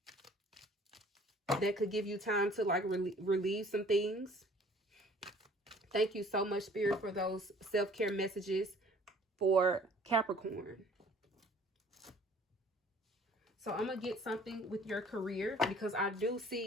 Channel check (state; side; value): normal; both; correlation 0.53